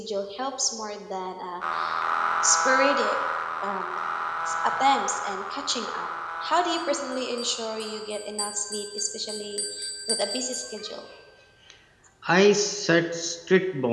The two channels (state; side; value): identical; both; correlation 1.00